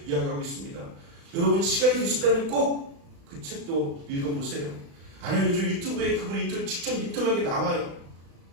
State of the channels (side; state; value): left; late; 35 ms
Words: 이야기하고 있습니다. 여러분 시간이 되신다면 꼭 그 책도 읽어보세요. 아니면 요즘 유튜브에 그분 직접 인터뷰하게 나와요.